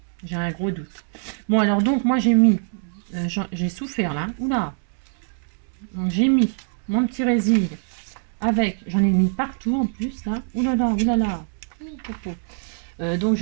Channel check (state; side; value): silent; left; 63 dB below the other